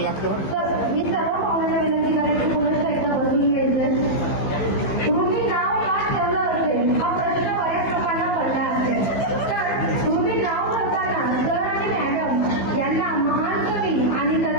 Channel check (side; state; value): right; late; 15 ms